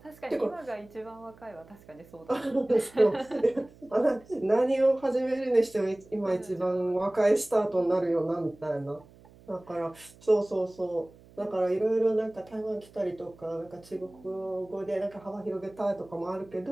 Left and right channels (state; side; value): noise; right; hum, 24 dB below the sound